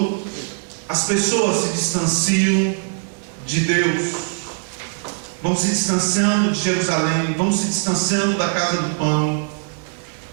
as pessoas se distanciam de Deus, vão se distanciando de Jerusalém, vão se distanciando da casa do pão,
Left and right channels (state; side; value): silent; left; 57 dB below the other